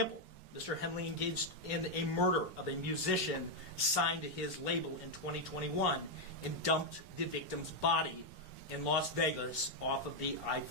Mr. Henley engaged in a murder of a musician signed to his label in 2021 and dumped the victim's body in Las Vegas off of the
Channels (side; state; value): both; normal; correlation 0.01